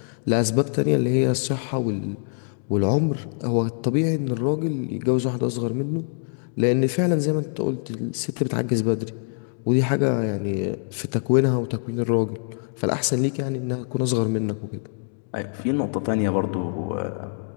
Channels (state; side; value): silent; right; 58 dB below the other